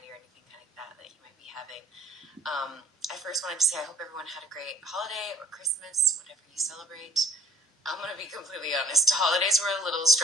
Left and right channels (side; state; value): both; normal; correlation 0.52